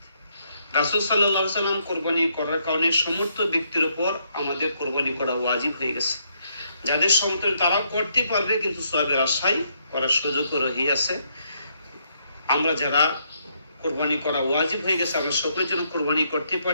রাসূল সাল্লাল্লাহু আলাইহি সাল্লাম কোরবানি করার কারণে সমস্ত ব্যক্তির উপর আমাদের কোরবানি করা ওয়াজিব হয়ে গেছে। যাদের সমর্থন তারা করতে পারবে, কিন্তু সওয়াবের আশায় করার সুযোগও রহিয়াছে। আমরা যারা কোরবানি করা ওয়াজিব হয়ে গেছে, আমরা সকলের জন্য কোরবানি করতে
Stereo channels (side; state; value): both; inverted; correlation -0.74